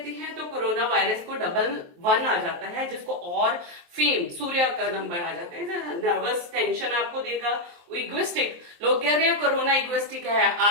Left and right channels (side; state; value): left; late; 23 ms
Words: है तो कोरोना वायरस को 111 आ जाता है, जिसको और फेम, सूर्य का नंबर आ जाता है। नर्वस टेंशन आपको देगा। इगोइस्टिक, लोग कह रहे हैं कोरोना इगोइस्टिक है,